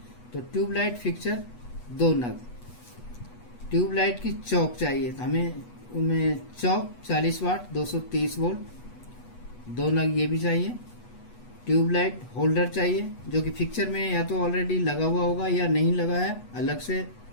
तो ट्यूबलाइट फिक्सर 2 नग। ट्यूबलाइट की चौक चाहिए, तो हमें उनमें चौक 40 वाट 230 वोल्ट 2 नग ये भी चाहिए। ट्यूबलाइट होल्डर चाहिए, जो कि फिक्सर में या तो ऑलरेडी लगा हुआ होगा या नहीं लगा है, अलग से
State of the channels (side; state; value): right; late; 8.2 ms